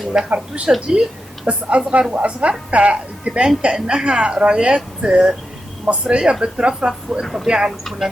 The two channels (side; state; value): both; normal; correlation 0.88